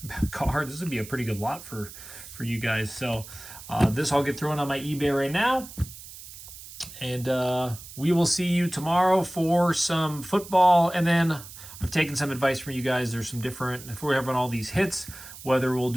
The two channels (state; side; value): noise; right; hiss, 15 dB below the sound